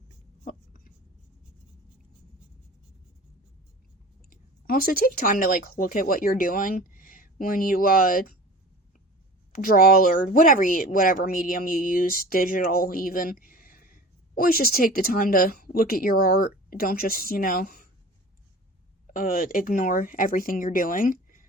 Also, take time to, like, look at what you're doing when you, draw or whatever medium you use, digital even. Always just take the time to look at your art. Don't just, ignore everything you're doing.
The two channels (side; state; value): both; normal; correlation 0.39